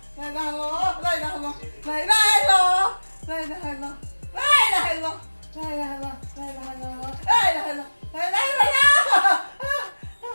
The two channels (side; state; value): both; inverted; correlation -1.00